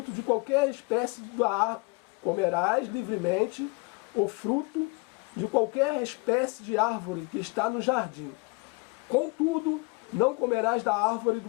de qualquer espécie da árvore. Comerás livremente o fruto de qualquer espécie de árvore que está no jardim. Contudo, não comerás da árvore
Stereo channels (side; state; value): right; quieter; 29.5 dB